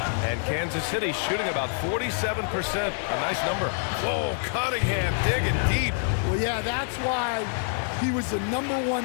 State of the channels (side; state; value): right; silent; 61 dB below the other